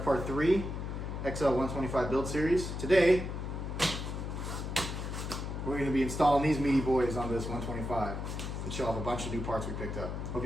part 3, XL125 build series. Today, we're going to be installing these meaty boys on this 125 and show off a bunch of new parts we picked up. Hope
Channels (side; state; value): left; noise; hum, 5 dB below the sound